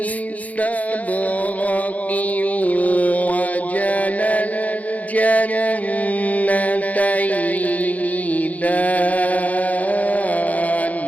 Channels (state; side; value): late; right; 0.074 ms